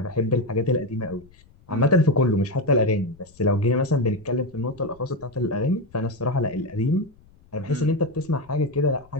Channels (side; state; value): left; noise; rumble, 27 dB below the sound